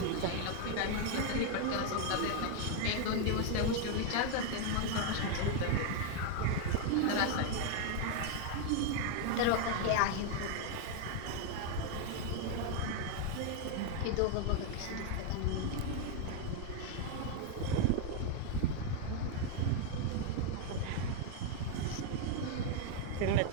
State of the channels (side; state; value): both; different; correlation 0.00